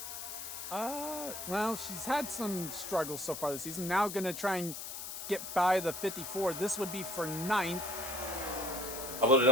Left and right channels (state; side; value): noise; left; hiss, 7 dB below the sound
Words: Well, she's had some struggles so far this season. Now gonna try and get by the 54. This would be for 9th. How about